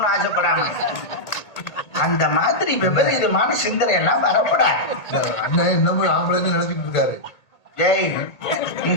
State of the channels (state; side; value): late; right; 1.8 ms